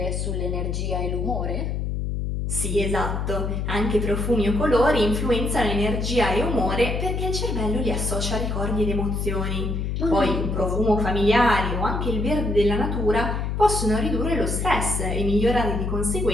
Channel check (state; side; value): noise; left; hum, 1 dB below the sound